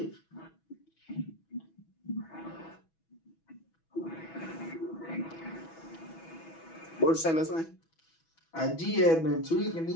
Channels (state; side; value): late; right; 6.1 ms